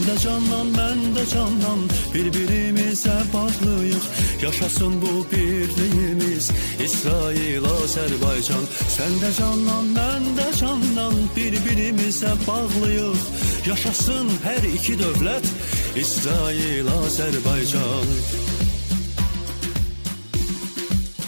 də candan, mən də candan, bir-birimizə bağlıyıq. Yaşasın bu birliyimiz, İsrail, Azərbaycan. Sən də candan, mən də candan, bir-birimizə bağlıyıq. Yaşasın hər iki dövlət, İsrail, Azərbaycan.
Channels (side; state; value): both; inverted; correlation -1.00